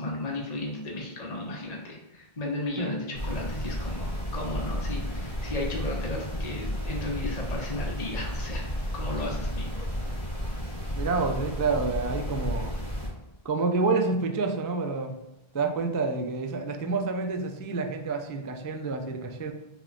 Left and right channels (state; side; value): late; right; 1.4 ms